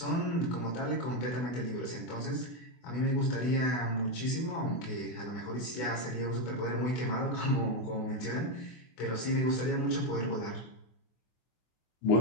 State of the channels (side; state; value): right; late; 24 ms